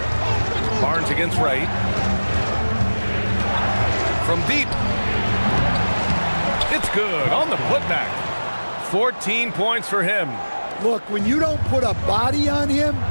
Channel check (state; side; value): inverted; both; correlation -1.00